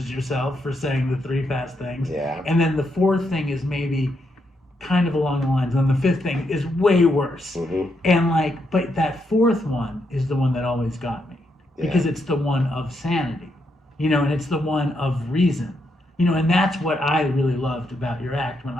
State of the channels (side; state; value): both; normal; correlation 0.80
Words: yourself for saying the 3 fast things. Yeah. And then the 4th thing is maybe kind of along the lines, and the 5th thing is way worse. Mm-hmm. And like, but that 4th one is the one that always got me, because it's the one of sanity, and it's the one of reason. And that's what I really loved about your act when